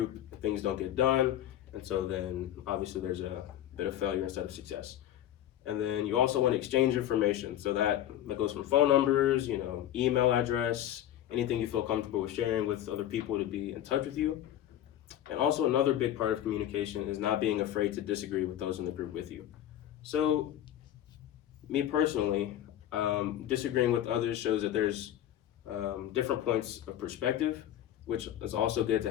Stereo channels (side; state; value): right; quieter; 11.9 dB